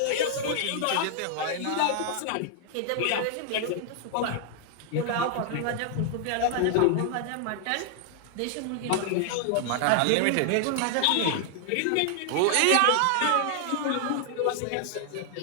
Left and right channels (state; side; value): different; both; correlation 0.00